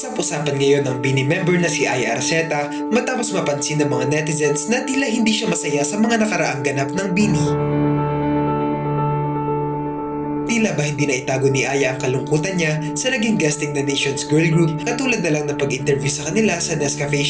Usap-usapan ngayon ang Bini member na si Aya Arceta matapos mapansin ng mga netizens na tila hindi siya masaya sa mga nakaraang ganap ng Bini. Tila ba hindi na itago ni Aya ang kalungkutan niya sa naging guesting na Nations Girl Group katulad na lang ng pag-interview sa kanila sa Nescafe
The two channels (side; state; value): both; identical; correlation 1.00